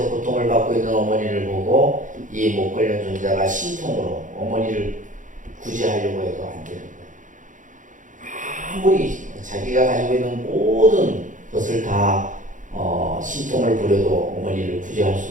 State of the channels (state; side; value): late; left; 0.37 ms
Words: 고통을 받고 있는 어머니를 보고 이 목걸련 존자가 신통으로 어머니를 구제하려고 해도 안 되는 거예요. 아무리 자기가 가지고 있는 모든 것을 다 신통을 부려도 어머니를 구제할